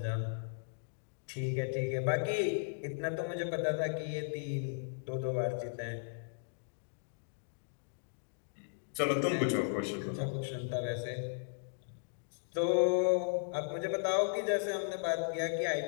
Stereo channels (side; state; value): right; silent; digital silence